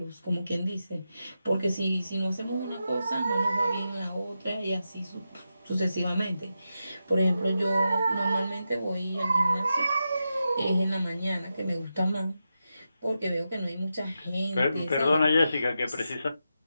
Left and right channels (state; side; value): inverted; both; correlation -0.88